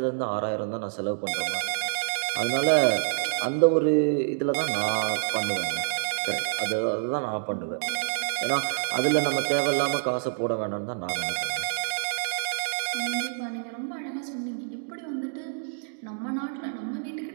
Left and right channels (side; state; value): left; silent; digital silence